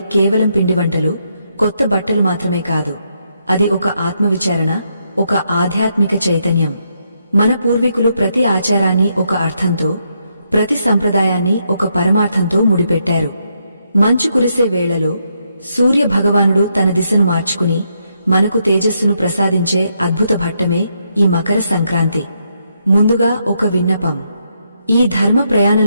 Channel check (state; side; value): inverted; both; correlation -0.78